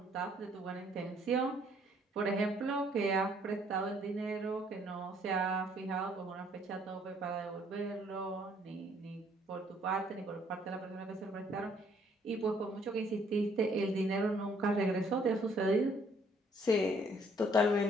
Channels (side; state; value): both; normal; correlation 0.64